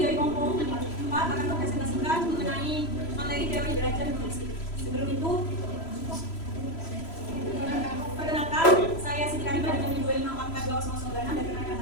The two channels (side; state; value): right; late; 3.0 ms